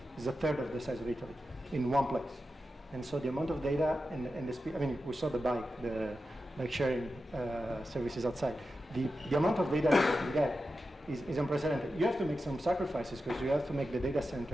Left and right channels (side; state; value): both; normal; correlation 0.91